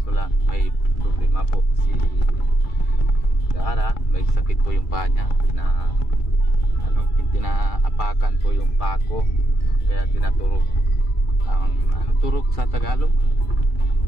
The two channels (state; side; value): late; right; 2.3 ms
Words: lang may problema po si Dara, may sakit po yung paa niya na tinaapakan po yung pako, kaya tinaturok ang turok sa Tagalog,